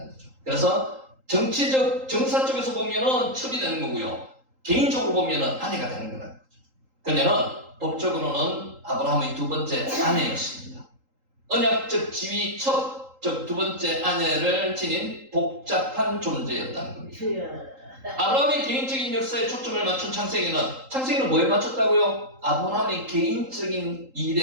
거죠. 그래서 정치적, 정사 쪽에서 보면은 첩이 되는 거고요. 개인적으로 보면은 아내가 되는 거라는 거죠. 그녀는 법적으로는 아브라함의 두 번째 아내였습니다. 언약적 지위 첩, 즉 두 번째 아내를 지닌 복잡한 존재였다는 겁니다. 아브라함의 개인적인 역사에 초점을 맞춘 창세기는 뭐에 맞췄다고요? 아브라함의 개인적인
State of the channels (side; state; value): left; late; 3.8 ms